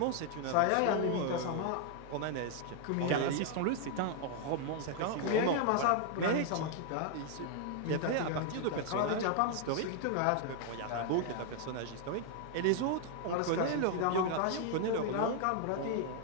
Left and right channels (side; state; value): both; different; correlation 0.00